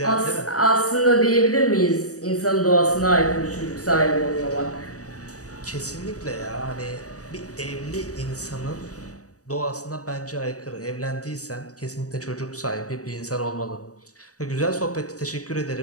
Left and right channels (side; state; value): right; late; 0.66 ms